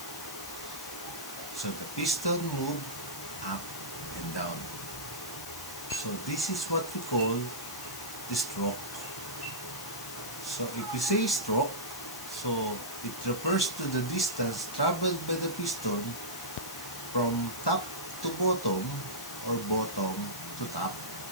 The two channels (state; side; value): noise; left; hiss, 9 dB below the sound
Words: So the piston move up and down. So this is what we call the stroke. So if we say stroke, so it refers to the distance traveled by the piston from top to bottom or bottom to top.